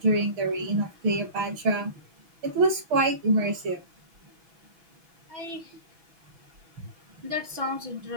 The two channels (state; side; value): late; left; 6.2 ms